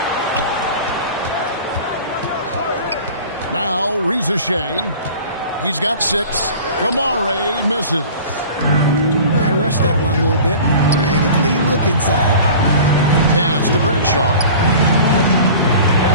Now Rizashay. He's got 6. Kamare misses. I rushed that one a little bit. Pretty clean look inside. Pass to Bradshaw.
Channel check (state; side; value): inverted; both; correlation -0.41